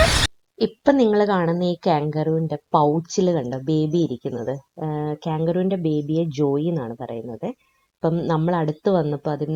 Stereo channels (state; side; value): identical; both; correlation 1.00